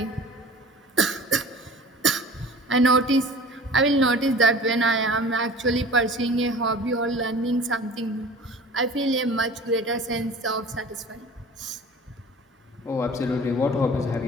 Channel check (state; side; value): normal; both; correlation 0.42